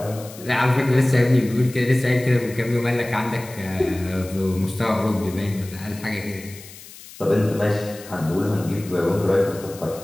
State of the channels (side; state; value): left; noise; hiss, 18 dB below the sound